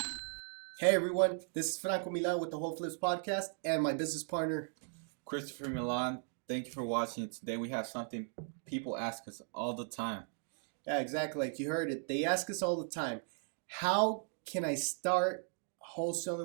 Hey everyone, this is Franko Milan with the Whole Flips podcast and my business partner. Christopher Milan, thank you for watching. Today we have something people ask us all the time. Yeah, exactly. Like you heard it. They ask us all the time, how can I start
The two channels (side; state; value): left; silent; 53 dB below the other